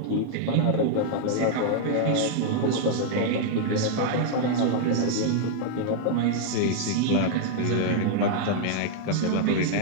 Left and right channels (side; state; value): both; different; correlation -0.01